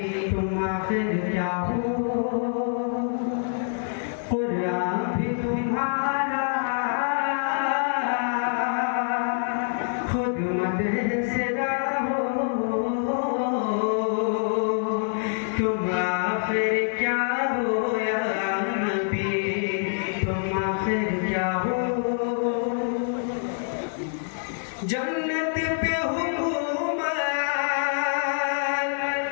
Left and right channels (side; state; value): right; silent; digital silence